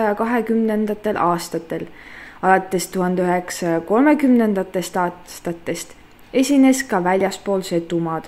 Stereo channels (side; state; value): both; identical; correlation 1.00